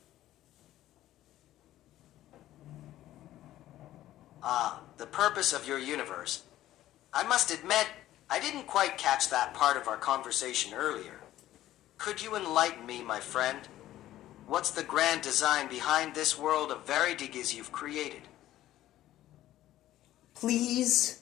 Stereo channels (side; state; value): right; quieter; 14.0 dB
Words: The purpose of your universe. I must admit, I didn't quite catch that part of our conversation earlier. Could you enlighten me, my friend? What's the grand design behind this world of Veridigas you've created?